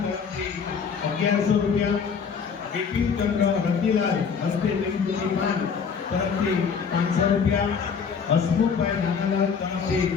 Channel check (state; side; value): quieter; right; 6.2 dB